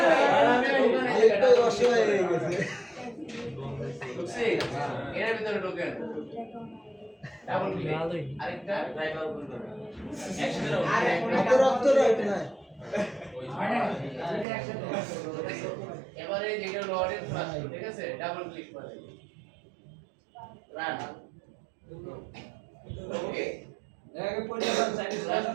এর ভিতরে ঢোকেন, ডাবল ক্লিক, আরেকটা ড্রাইভার ওপেন করুন, এবারে যেটা লর্ডের ফার্স্ট, ঠিক আছে, ডাবল ক্লিক করেন, রান। ওকে আগে পরিচালনা সাইডে লাস্ট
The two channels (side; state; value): left; drops out; at 14.5 s